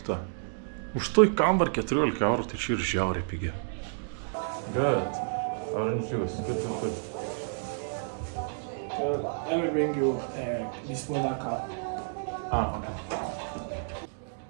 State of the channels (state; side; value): silent; left; digital silence